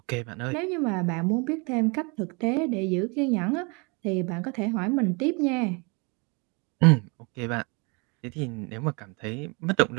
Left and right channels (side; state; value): left; quieter; 31.0 dB